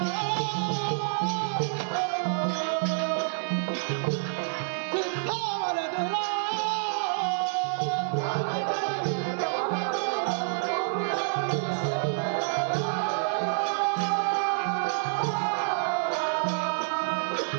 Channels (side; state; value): left; silent; 59 dB below the other